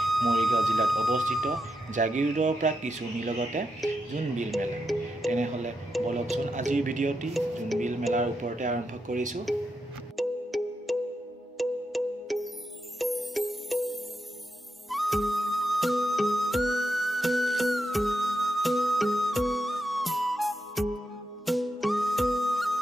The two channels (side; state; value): both; normal; correlation 0.85